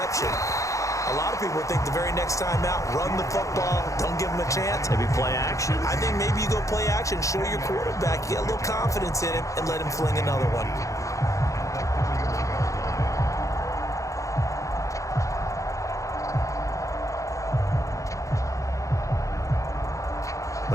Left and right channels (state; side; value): late; right; 0.15 ms